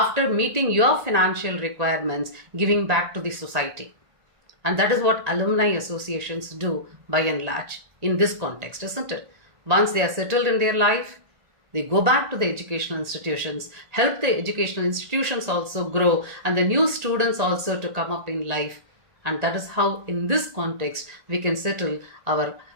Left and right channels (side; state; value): left; late; 1.9 ms